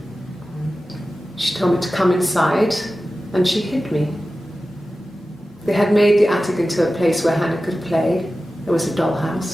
She told me to come inside and she hid me. They had made the attic into a place where Hannah could play. There was a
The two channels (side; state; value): both; normal; correlation 0.94